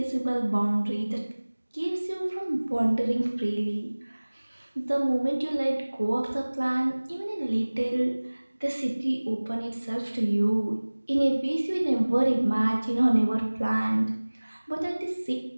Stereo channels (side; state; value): both; inverted; correlation -1.00